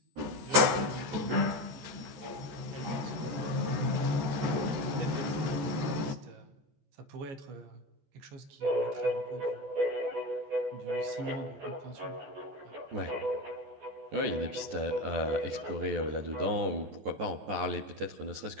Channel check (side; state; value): left; late; 14 ms